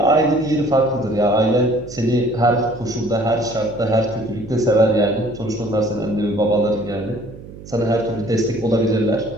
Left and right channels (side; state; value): right; noise; hum, 16 dB below the sound